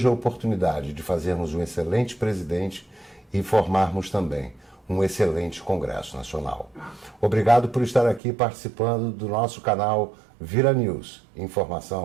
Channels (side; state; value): left; drops out; at 8.2 s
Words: a oportunidade de fazermos um excelente presidente e formarmos também um excelente Congresso Nacional. Obrigado por estar aqui participando do nosso canal Vira News.